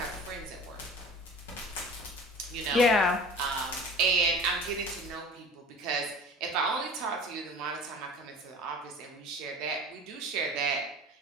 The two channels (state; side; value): normal; both; correlation 0.41